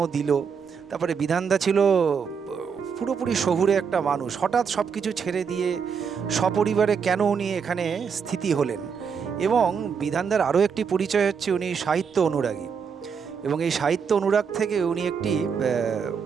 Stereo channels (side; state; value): left; quieter; 6.3 dB